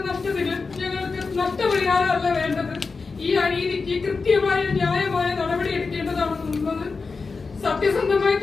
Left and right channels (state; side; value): quieter; right; 4.5 dB